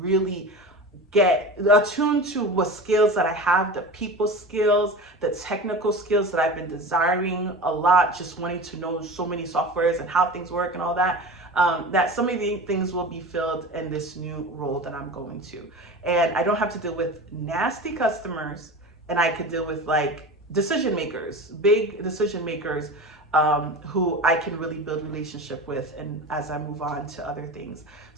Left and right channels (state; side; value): normal; both; correlation 0.31